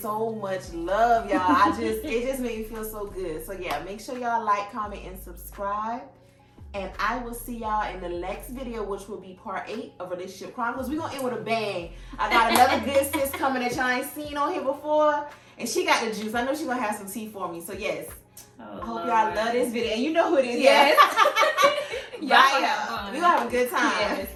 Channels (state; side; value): identical; both; correlation 1.00